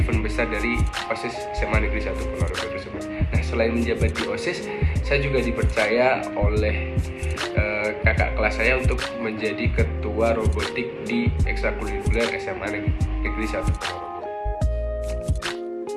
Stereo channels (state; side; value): identical; both; correlation 1.00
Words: besar dari OSIS SMA Negeri 1 Ponorogo tersebut. Nah, selain menjabat di OSIS, saya juga dipercaya oleh kakak kelas saya untuk menjadi ketua robotik di ekstrakurikuler SMA Negeri 1 Ponorogo.